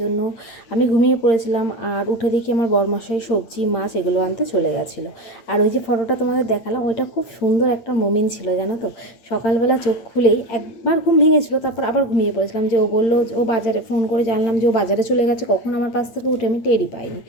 আমি ঘুমিয়ে পড়েছিলাম, আর উঠে দেখি আমার বরমশাই সবজি মাছ এগুলো আনতে চলে গেছিলো। আর ওই যে ফটোটা তোমাদের দেখালাম, ওইটা খুব সুন্দর একটা মোমেন্ট ছিল, জানো তো। সকালবেলা চোখ খুলেই একবার ঘুম ভেঙেছিল, তারপর আবার ঘুমিয়ে পড়েছিলাম। যে ও বললো, ও বাজারে ফোন করে জানলাম যে ও বাজারে চলে গেছে, কখন আমার পাশ থেকে উঠে আমি টেরই পাইনি।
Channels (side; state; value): right; late; 8.7 ms